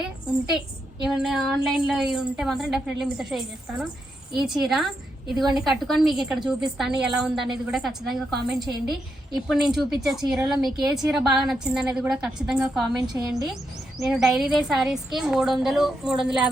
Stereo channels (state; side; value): normal; both; correlation 0.83